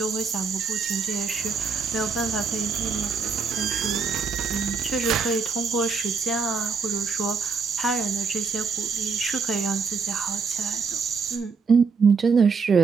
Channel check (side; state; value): left; quieter; 5.2 dB